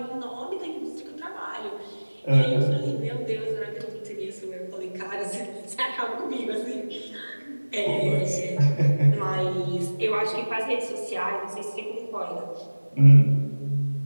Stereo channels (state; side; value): inverted; both; correlation -1.00